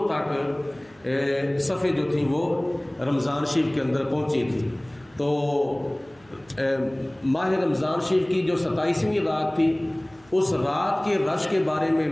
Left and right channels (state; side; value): noise; right; hum, 29 dB below the sound